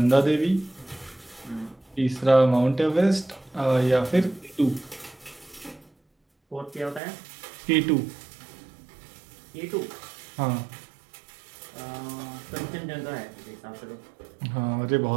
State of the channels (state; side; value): drops out; left; at 7.0 s